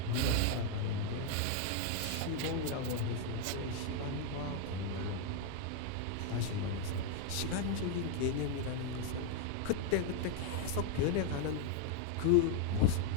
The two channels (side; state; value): both; different; correlation 0.00